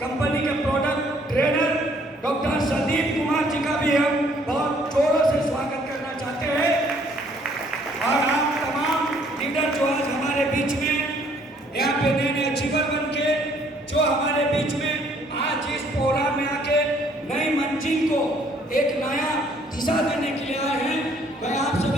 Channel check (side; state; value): both; normal; correlation 0.63